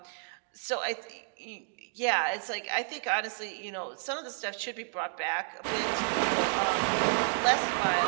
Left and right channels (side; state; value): left; silent; digital silence